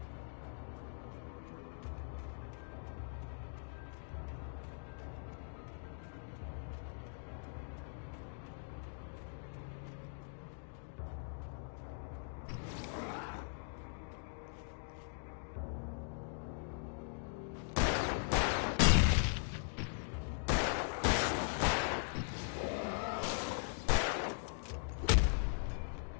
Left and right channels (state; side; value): silent; right; digital silence